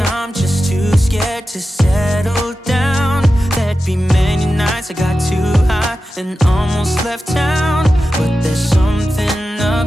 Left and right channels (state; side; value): normal; both; correlation 0.92